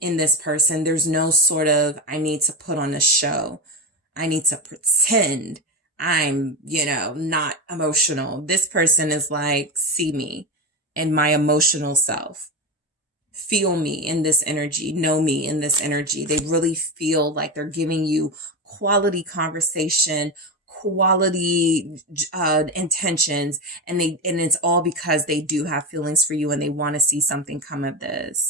this person. There's no sort of, I need to put on a show. I need to pretend I'm, not emotional. This person is like, see me and my emotional self. Feel me in this energy, know me in this energy. They really feel like they're giving you quality conversation, quality intentions, and it's all because they do have feelings for you and they want to see something come of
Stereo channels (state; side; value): normal; both; correlation 0.17